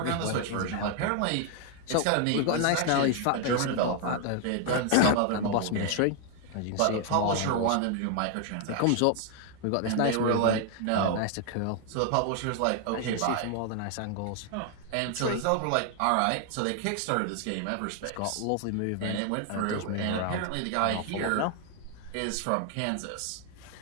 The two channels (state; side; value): different; both; correlation 0.00